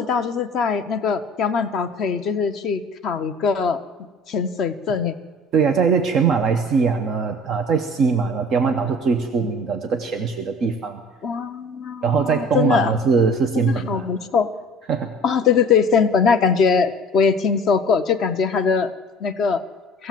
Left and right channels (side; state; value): both; normal; correlation 0.45